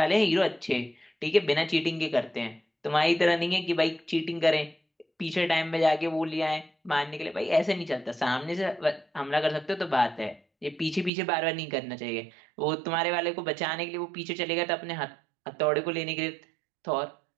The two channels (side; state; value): left; drops out; at 11.1 s